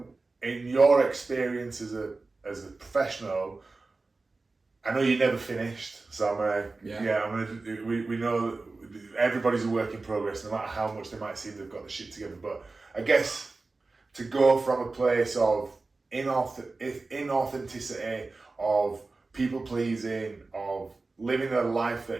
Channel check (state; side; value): quieter; left; 3.6 dB